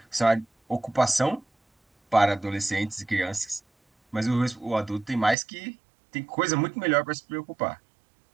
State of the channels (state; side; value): drops out; left; at 5.4 s